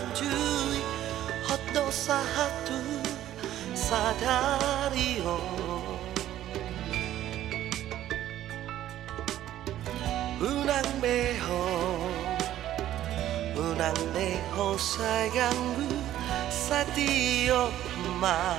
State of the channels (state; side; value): quieter; left; 12.7 dB